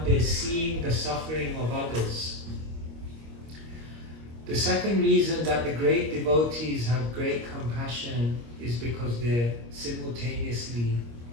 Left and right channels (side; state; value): left; late; 25 ms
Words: they're seeing the suffering of others. The second reason that the great devotees have great compassion is because they're simultaneously